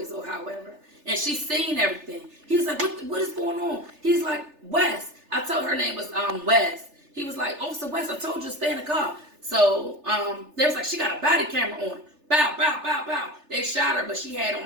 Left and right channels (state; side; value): late; left; 3.4 ms